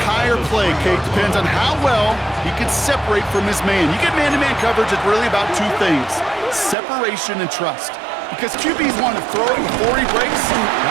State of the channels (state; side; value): drops out; left; at 6.8 s